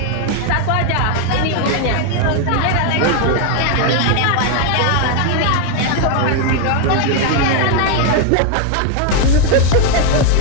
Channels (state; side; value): different; both; correlation 0.00